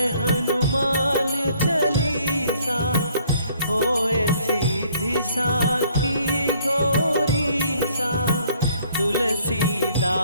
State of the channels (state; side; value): inverted; both; correlation -0.62